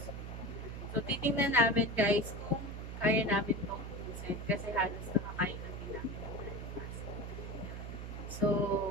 So titingnan namin guys kung kaya namin itong ubusin kasi halos nakakain na din namin ng breakfast. So,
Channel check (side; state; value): right; noise; hum, 7 dB below the sound